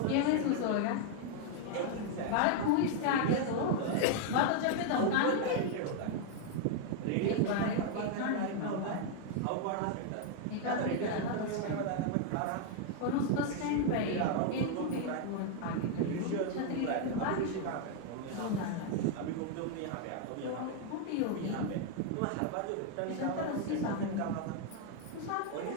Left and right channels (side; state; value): both; different; correlation 0.00